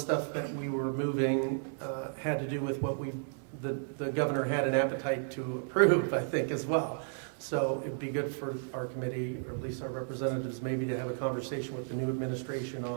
that we were moving had to do with what the governor had an appetite to approve, I think, as well. So it'd be good for our committee, or at least our representatives, maybe to have a conversation with the new administration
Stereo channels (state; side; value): silent; left; digital silence